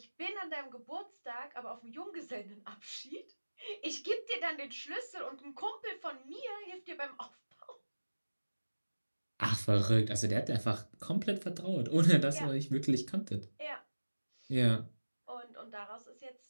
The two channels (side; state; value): both; inverted; correlation -1.00